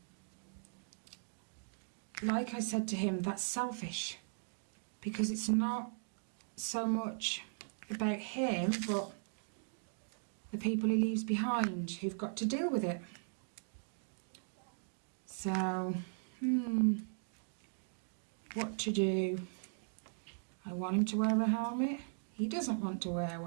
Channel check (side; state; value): left; silent; digital silence